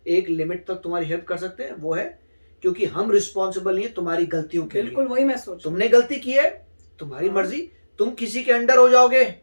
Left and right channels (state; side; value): inverted; both; correlation -1.00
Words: एक लिमिट तक तुम्हारी हेल्प कर सकते हैं, वो है क्योंकि हम रिस्पॉन्सिबल नहीं है तुम्हारी गलतियों के लिए। बिल्कुल वही मैं सोच, तुमने गलती की है, तुम्हारी मर्जी, तुम किसी के अंडर हो जाओगे